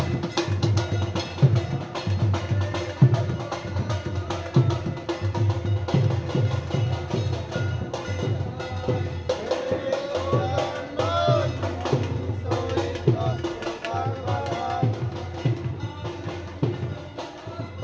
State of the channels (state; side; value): identical; both; correlation 1.00